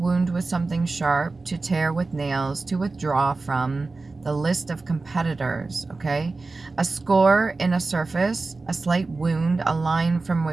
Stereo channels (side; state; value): left; quieter; 3.6 dB